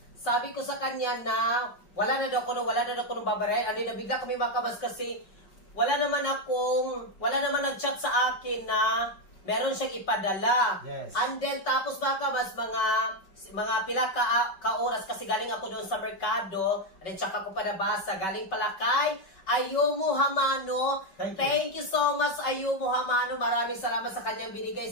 sabi ko sa kanya na wala na daw ko nung babaray. And then nabigla kami mga kabas kasi wala naman nag-chat sa akin na meron siyang ipadala. Yes. And then tapos mga kabas, mga pila ka oras kasi galing ako doon sa merkado. And then tsaka ko pa nabasa. Galing pala kay Ayumu Hamano. Thank you so much Ayumu Hamano. Maraming salamat sa kanyang binigay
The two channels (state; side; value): late; right; 5.2 ms